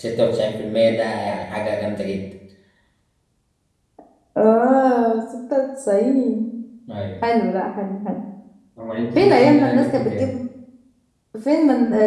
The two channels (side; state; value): both; identical; correlation 1.00